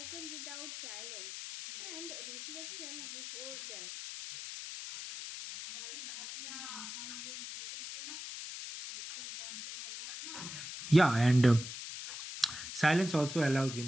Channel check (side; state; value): left; noise; hiss, 9 dB below the sound